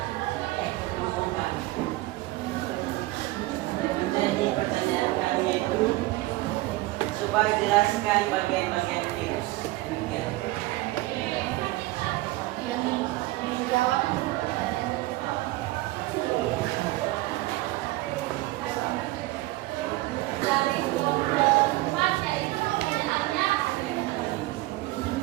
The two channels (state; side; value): quieter; left; 19.1 dB